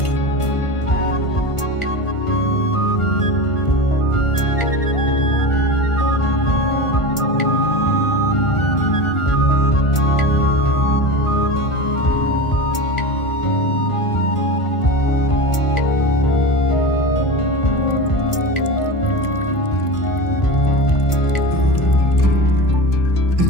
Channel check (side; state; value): right; late; 1.5 ms